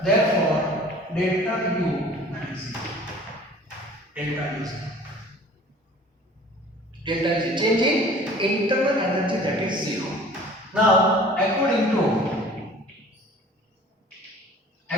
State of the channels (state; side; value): normal; both; correlation 0.47